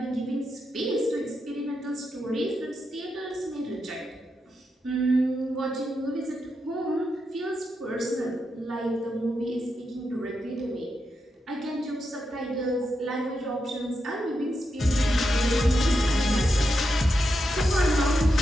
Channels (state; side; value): normal; both; correlation 0.85